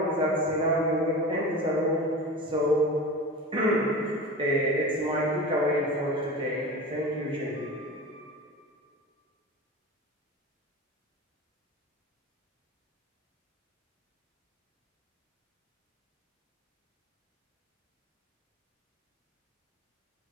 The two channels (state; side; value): normal; both; correlation 0.32